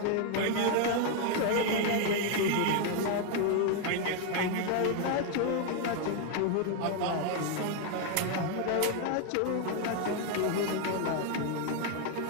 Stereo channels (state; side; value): different; both; correlation 0.01